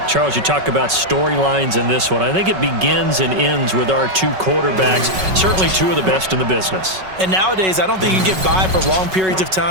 Charles, you talk about storylines in this one. I think it begins and ends with our two quarterbacks, certainly two of the best in the business. And nowadays, I don't think you can get by for long periods of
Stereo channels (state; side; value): late; left; 5.3 ms